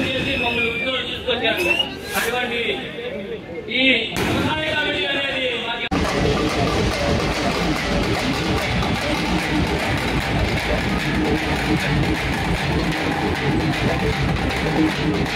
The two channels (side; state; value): both; identical; correlation 1.00